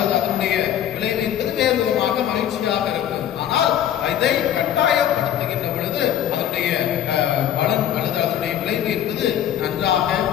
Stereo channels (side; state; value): right; quieter; 10.5 dB